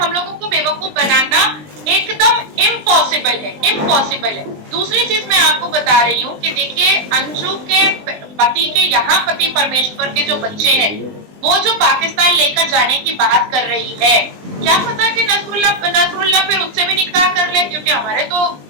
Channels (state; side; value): late; left; 20 ms